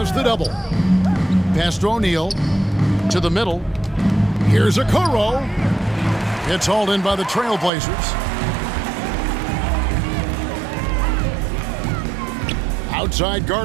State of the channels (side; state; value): left; drops out; at 7.7 s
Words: the double. Pass to O'Neal. To the middle. Here's Okoro. It's hauled in by the Trailblazers. Outside